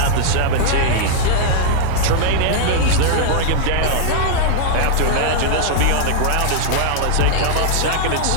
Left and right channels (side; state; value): both; different; correlation -0.01